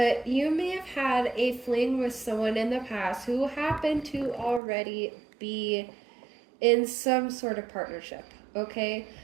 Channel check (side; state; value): left; drops out; at 4.6 s